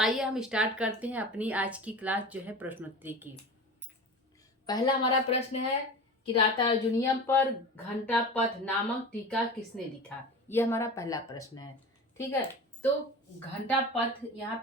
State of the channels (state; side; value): normal; both; correlation 0.33